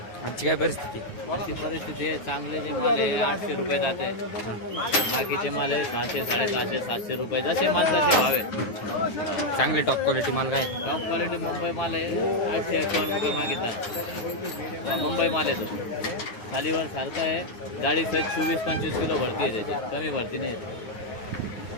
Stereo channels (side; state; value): right; late; 9.3 ms